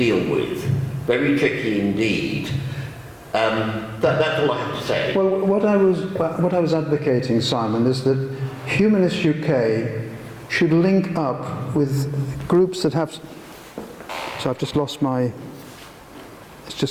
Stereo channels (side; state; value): both; identical; correlation 1.00